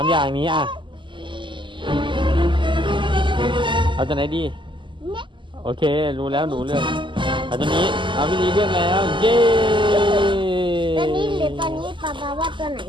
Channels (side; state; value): left; late; 0.24 ms